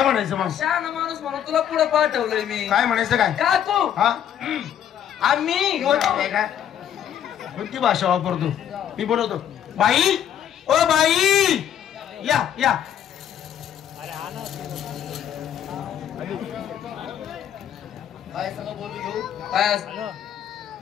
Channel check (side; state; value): right; quieter; 9.8 dB